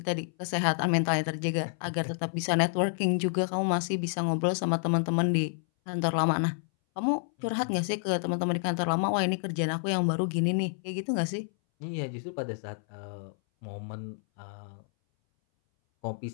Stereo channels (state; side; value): silent; right; 58 dB below the other